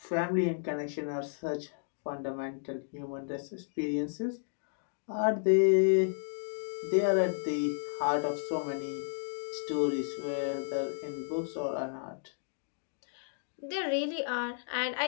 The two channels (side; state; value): right; silent; digital silence